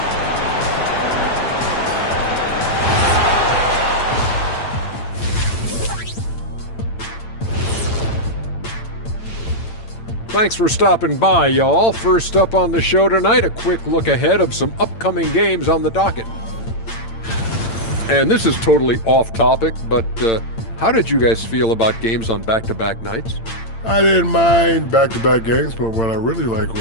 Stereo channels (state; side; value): late; right; 8.8 ms